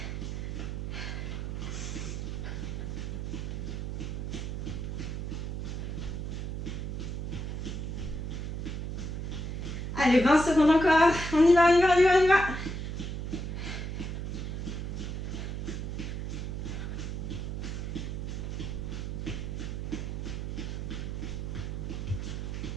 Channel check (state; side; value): noise; right; hum, 4 dB below the sound